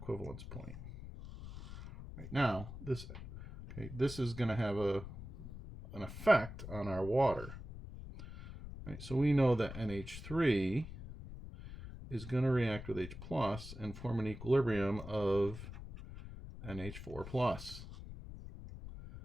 point. Right, now, this is going to have an effect on our water. Right, so we know that NH3 is going to react with H plus and form an equilibrium of NH4 plus.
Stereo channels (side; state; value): left; noise; rumble, 11 dB below the sound